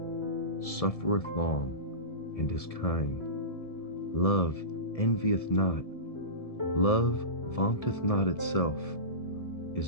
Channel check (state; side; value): late; right; 1.7 ms